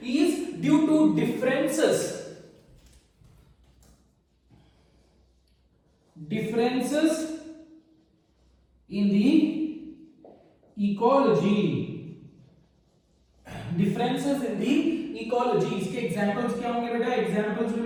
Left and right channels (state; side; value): identical; both; correlation 1.00